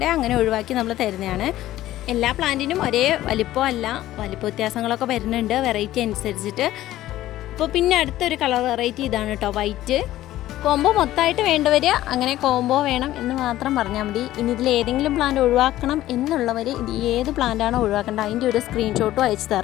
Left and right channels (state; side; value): quieter; right; 14.6 dB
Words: അങ്ങനെ ഒഴിവാക്കി നമ്മൾ തരുന്നതാണ്. എല്ലാ പ്ലാന്റിനും ഒരേ വലിപ്പമല്ല, വലിപ്പ വ്യത്യാസങ്ങളൊക്കെ വരുന്നുണ്ട് വെറൈറ്റി അനുസരിച്ചിട്ട്. അപ്പോൾ പിന്നെ അടുത്തൊരു കളർ വെറൈറ്റി ഇതാണ് കേട്ടോ, വൈറ്റ്. കോംബോ മൊത്തമായിട്ട് വേണ്ടവർ അങ്ങനെ കോംബോ വേണം എന്ന് മാത്രം പറഞ്ഞാൽ മതി. ഇനി ഇതിൽ ഏതെങ്കിലും പ്ലാന്റ് ഒഴിവാക്കണം എന്നുള്ളവർ ഇത് ഏത് പ്ലാന്റാണോ ഒഴിവാക്കേണ്ടത് അതിൻ്റെ ഒരു സ്ക്രീൻഷോട്ടും അയച്ചു